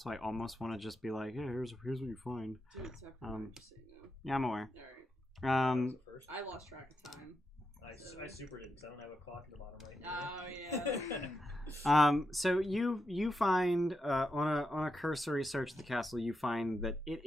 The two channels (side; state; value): both; normal; correlation 0.86